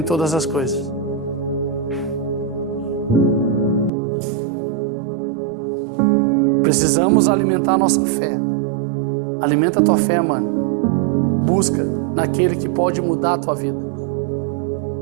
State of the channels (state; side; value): drops out; left; at 3.9 s